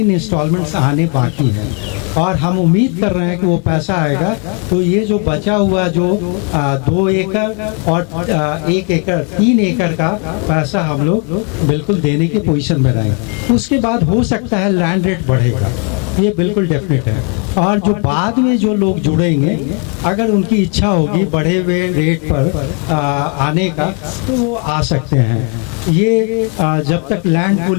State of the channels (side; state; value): right; quieter; 37.2 dB